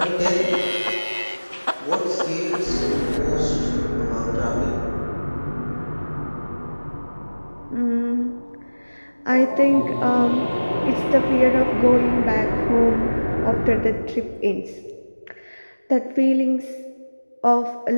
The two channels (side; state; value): both; inverted; correlation -1.00